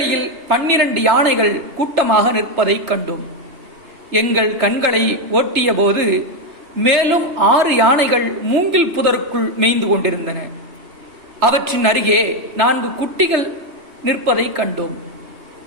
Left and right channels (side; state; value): left; late; 3.2 ms